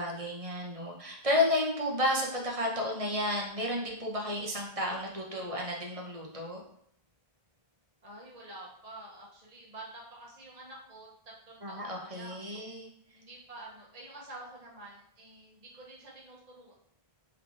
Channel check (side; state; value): left; late; 1.6 ms